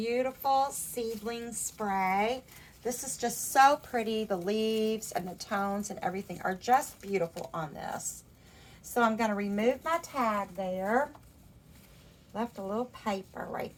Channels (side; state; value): both; identical; correlation 1.00